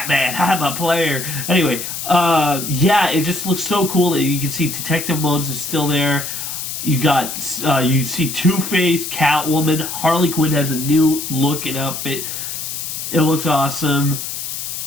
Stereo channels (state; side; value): noise; left; hiss, 6 dB below the sound